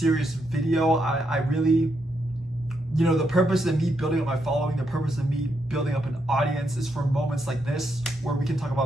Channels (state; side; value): normal; both; correlation 0.80